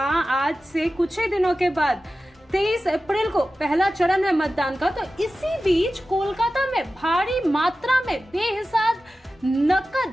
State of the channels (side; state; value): both; normal; correlation 0.94